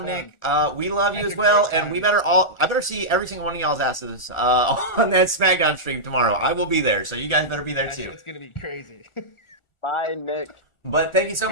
Nick. We love you as well, and I better see every single one of y'all's asses on that SmackDown stream tomorrow. I will be there, so you guys better be there too. It's gonna be crazy. Bye, Nick. But thank you so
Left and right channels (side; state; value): right; late; 1.4 ms